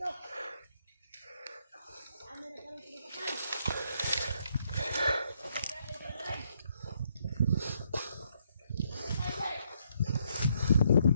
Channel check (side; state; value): both; inverted; correlation -0.73